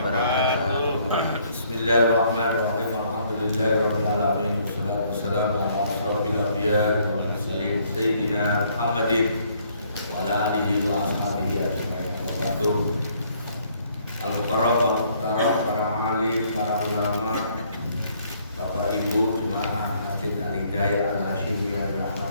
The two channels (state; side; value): inverted; both; correlation -0.65